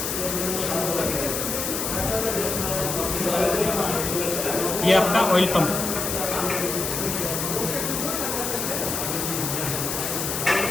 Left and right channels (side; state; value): left; noise; hiss, 2 dB below the sound